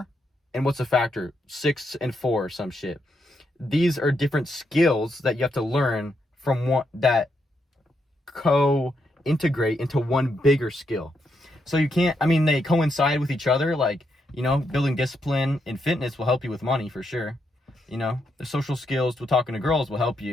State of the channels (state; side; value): normal; both; correlation 0.80